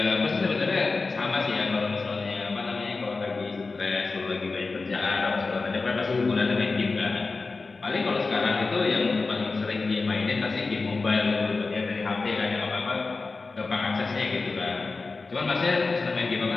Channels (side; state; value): right; quieter; 3.9 dB